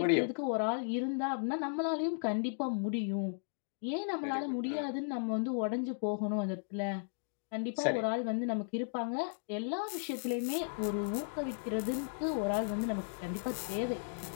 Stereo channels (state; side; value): silent; right; digital silence